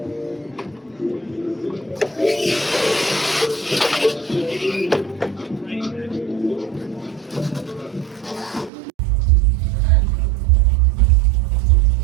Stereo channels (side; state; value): left; drops out; at 8.7 s